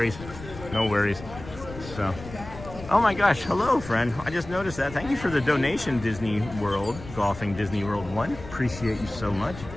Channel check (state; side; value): noise; left; rumble, 14 dB below the sound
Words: no worries. So, oh my gosh, hello, friend. I just noticed that. Thank you for the donation, Disney World, Golfing Disney World 1. Appreciate you so much.